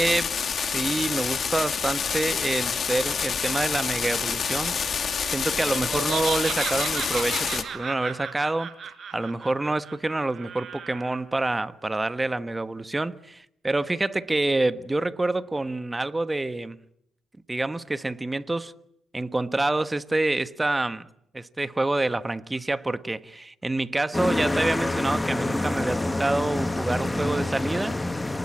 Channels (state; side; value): normal; both; correlation 0.92